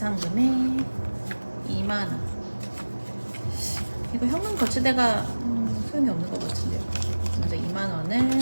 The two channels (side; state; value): both; inverted; correlation -1.00